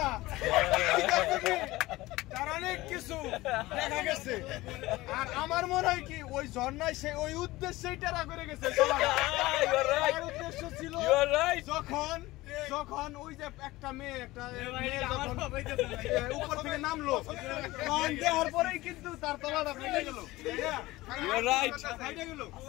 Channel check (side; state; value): right; quieter; 18.9 dB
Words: তার অনেক কিছু দেখা গেছে। আর আমার মনে হয় কি ওই ঝর্ণায় সে ওই উদ্দেশ্যেই টেরা করে গেছে। তার উদ্দেশ্য ছিল যখন ওই যে একটা মেয়ে উপর থেকে নামলো, তখন দেওয়ার পরেই কিন্তু তার তলাটা ফেটে গেল।